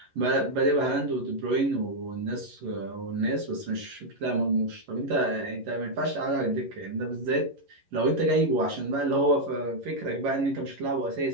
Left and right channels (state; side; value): late; left; 11 ms